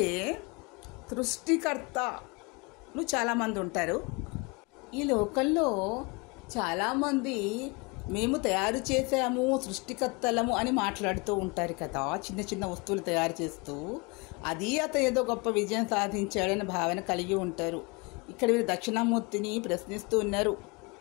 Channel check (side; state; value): right; quieter; 28.7 dB